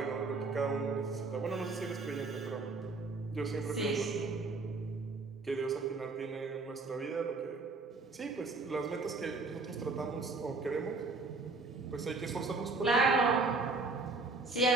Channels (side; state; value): left; quieter; 3.7 dB